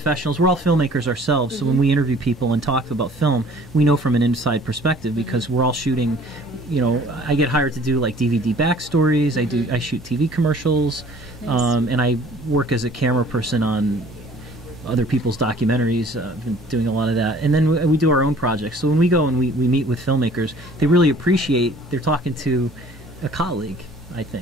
We're all filmmakers ourselves. So when we interview people and talk about film, we know from an inside perspective because we're all shooting, you know, I get hired to do like DVD backstories. I shoot TV commercials, Nice. and I work as a camera person on other people's documentaries. I've been doing a lot of that. And then we do our own projects. So when we go and we meet with filmmakers, they really appreciate, they're talking to a colleague, I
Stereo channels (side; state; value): both; normal; correlation 0.52